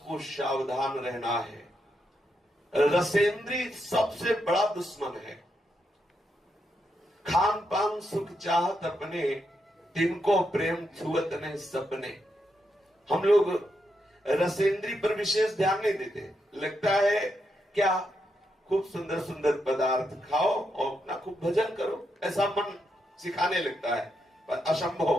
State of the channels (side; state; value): both; normal; correlation 0.82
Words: को सावधान रहना है। रसेंद्री सबसे बड़ा दुश्मन है। खान पान सुख चाहत अपने, तिनको प्रेम छुअत नहीं सपने। हम लोग रसेंद्री पर विशेष ध्यान नहीं देते। लगता है क्या खूब सुंदर सुंदर पदार्थ खाओ और अपना खूब भजन करो, ऐसा मन सिखाने लगता है, पर